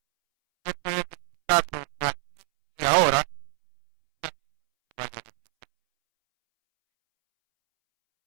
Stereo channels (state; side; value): silent; left; 61 dB below the other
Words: usted puede disfrutarlo aquí y ahora y también cuando se vaya a la presencia de Él. Amén.